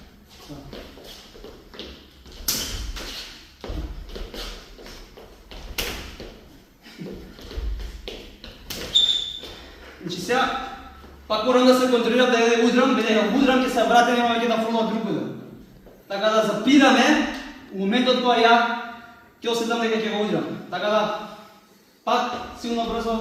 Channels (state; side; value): identical; both; correlation 1.00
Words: Значи сега, пак морам да се контролирам да ја удрам, бидејќи ако удрам ќе се вратам и ќе да фрлам другаде. Така да запираме у моментот кога ја ќе осетам дека ќе го удрам. Така да пак силно